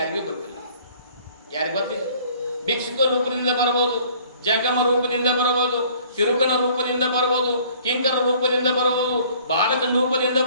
ಗೊತ್ತಿಲ್ಲ. ಯಾರಿಗೂ ಗೊತ್ತಿಲ್ಲ. ಭಿಕ್ಷುಕ ರೂಪದಿಂದ ಬರಬಹುದು, ಜಂಗಮ ರೂಪದಿಂದ ಬರಬಹುದು, ತಿರುಕನ ರೂಪದಿಂದ ಬರಬಹುದು, ಕಿಂಕರ ರೂಪದಿಂದ ಬರಬಹುದು, ಬಾಲಕನ ರೂಪದಿಂದ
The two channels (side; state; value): both; inverted; correlation -0.55